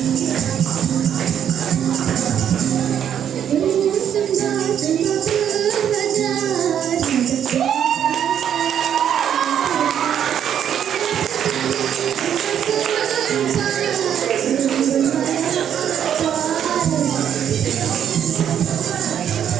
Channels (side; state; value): left; quieter; 9.2 dB